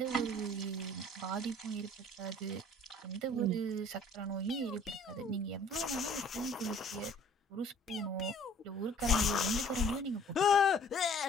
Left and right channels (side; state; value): both; normal; correlation 0.53